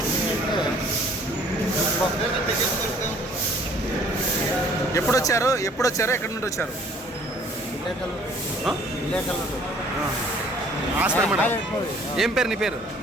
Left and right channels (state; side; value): normal; both; correlation 0.56